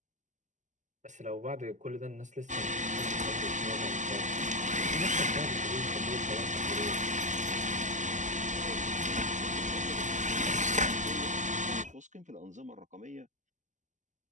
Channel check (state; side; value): late; left; 0.35 ms